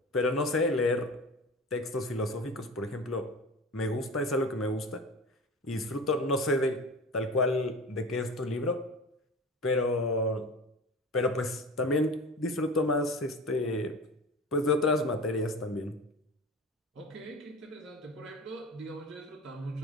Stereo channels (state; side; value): normal; both; correlation 0.33